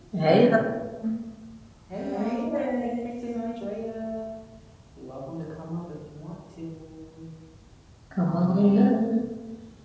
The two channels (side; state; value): both; identical; correlation 1.00